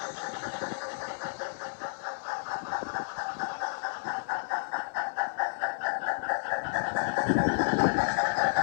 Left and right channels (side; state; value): right; silent; digital silence